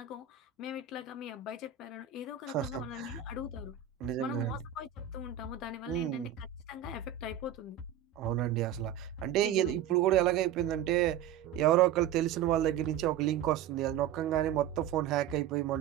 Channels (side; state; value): left; quieter; 9.8 dB